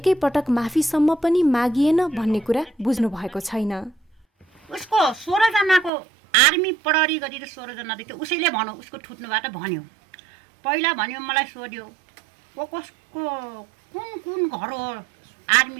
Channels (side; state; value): left; drops out; at 5.9 s